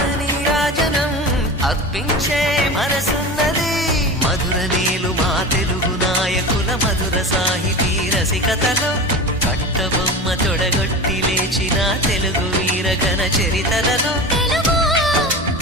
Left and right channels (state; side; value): normal; both; correlation 0.29